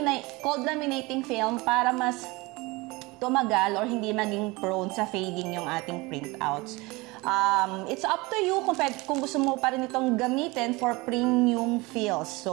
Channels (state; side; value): quieter; left; 23.7 dB